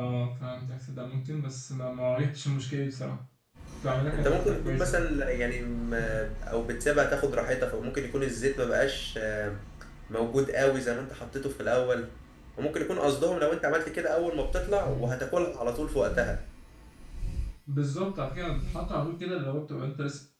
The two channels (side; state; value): both; identical; correlation 1.00